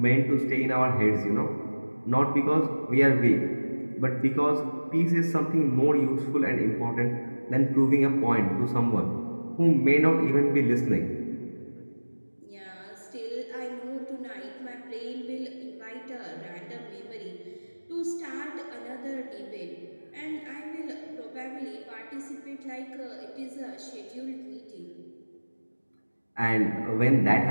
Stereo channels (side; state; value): both; inverted; correlation -1.00